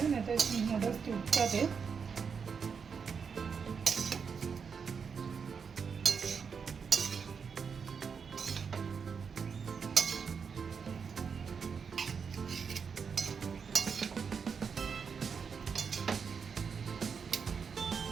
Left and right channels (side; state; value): left; quieter; 6.1 dB